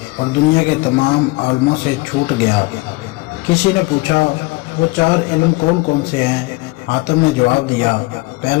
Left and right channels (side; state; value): right; quieter; 23.6 dB